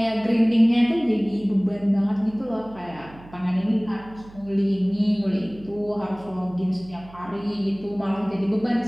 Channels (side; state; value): right; noise; hum, 20 dB below the sound